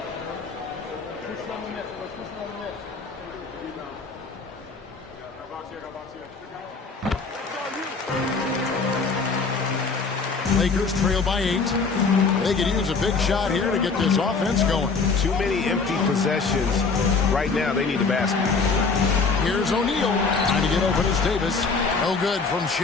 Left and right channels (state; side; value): quieter; right; 4.6 dB